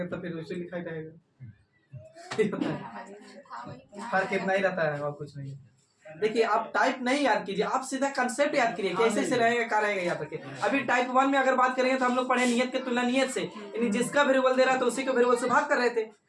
तो फिर उसे लिखा ही रहेगा। फर्क इतना ही रहता है और कुछ नहीं। देखिए आप टाइप नहीं याद कीजिए, आप सीधा कंसेप्ट याद कीजिए कैसे से रहेगा क्या रहेगा याद रखिए। अभी टाइप 1 में अगर बात करेंगे तो हम लोग पढ़े नियत के तुलना नियत से, यानी जिसका वेरिएबल दे रहा था उसी के वेरिएबल से भाग कर रहे थे।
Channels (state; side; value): identical; both; correlation 1.00